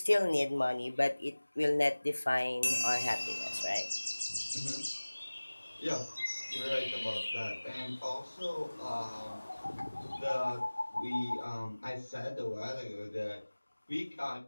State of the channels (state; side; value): inverted; both; correlation -1.00